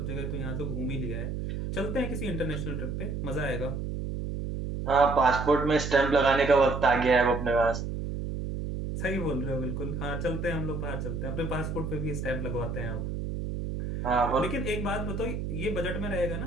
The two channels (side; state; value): right; noise; hum, 4 dB below the sound